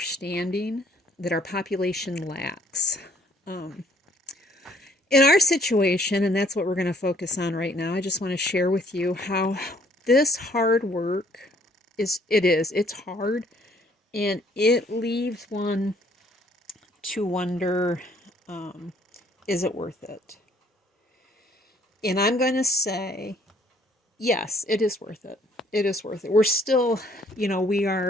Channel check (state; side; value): normal; both; correlation 0.62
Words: that our population lacks. In our situation, and that's what we're going to focus on right now, I just want to share with you how this hard work it's hard, and it leaves one to wonder, is it worth it? And I'm going to say, yes, it is worth it. It is worth it. We're still, we